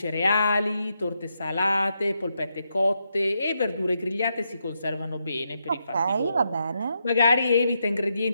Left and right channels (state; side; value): inverted; both; correlation -0.82